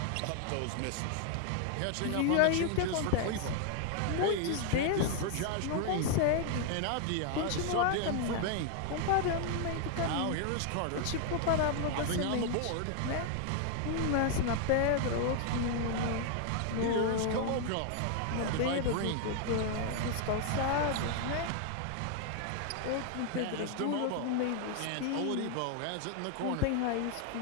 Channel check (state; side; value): different; both; correlation 0.00